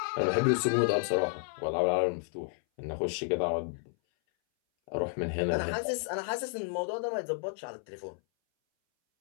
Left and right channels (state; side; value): silent; right; 57 dB below the other